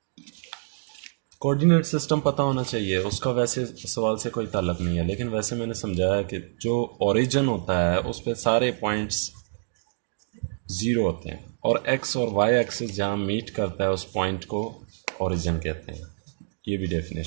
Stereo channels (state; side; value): silent; left; digital silence